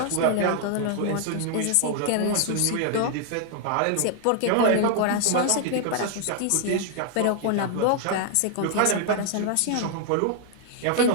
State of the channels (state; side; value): different; both; correlation 0.00